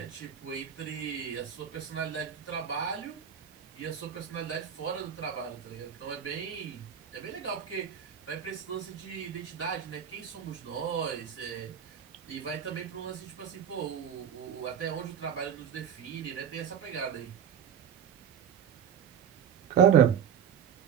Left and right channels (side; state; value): left; quieter; 8.3 dB